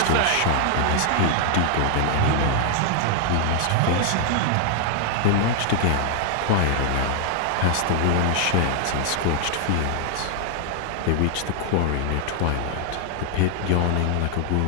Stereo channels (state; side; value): different; both; correlation 0.00